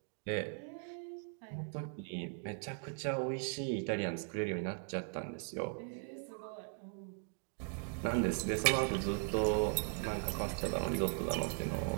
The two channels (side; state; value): left; silent; 52 dB below the other